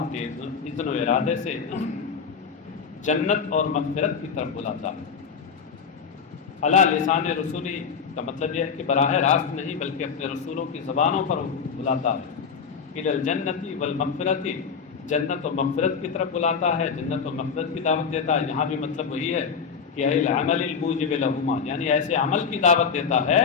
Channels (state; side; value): quieter; right; 6.2 dB